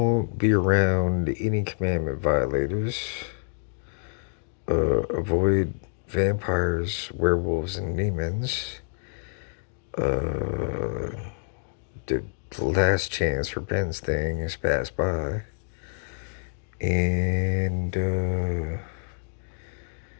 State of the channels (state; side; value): silent; right; digital silence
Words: be around any commandment violators. Avoid vampires, werewolves, and demons. Uh, the last chance for Ben's thing is passed by. And,